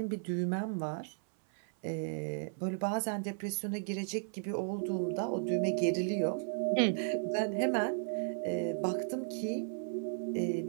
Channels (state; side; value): silent; left; 55 dB below the other